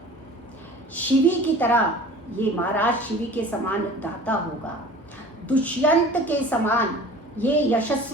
शिवी की तरह ये महाराज शिवी के समान दाता होगा, दुष्यंत के समान ये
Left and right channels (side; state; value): both; normal; correlation 0.43